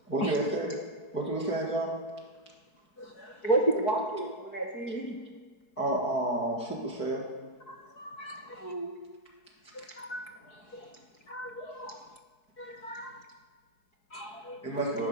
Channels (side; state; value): right; late; 4.7 ms